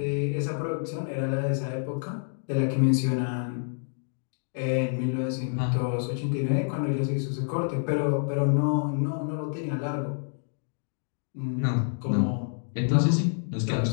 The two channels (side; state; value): right; silent; digital silence